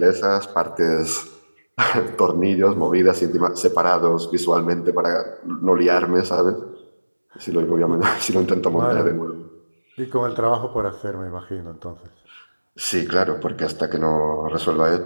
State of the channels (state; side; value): inverted; both; correlation -1.00